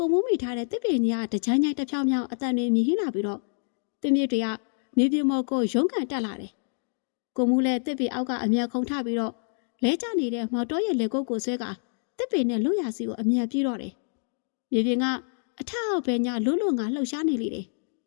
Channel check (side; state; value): right; silent; 60 dB below the other